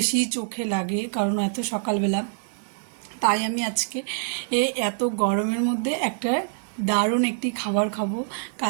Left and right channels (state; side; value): silent; left; 62 dB below the other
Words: চোখে লাগে, কারণ এত সকালবেলা। তাই আমি আজকে এত গরমের মধ্যে একটা দারুণ একটি খাবার খাবো।